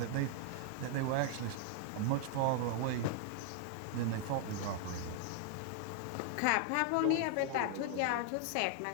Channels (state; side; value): different; both; correlation 0.00